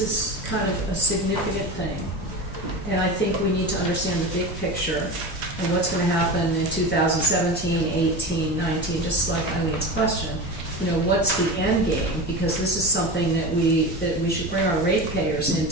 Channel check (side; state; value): both; normal; correlation 0.27